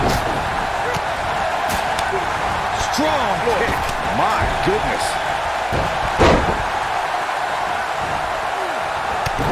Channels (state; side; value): identical; both; correlation 1.00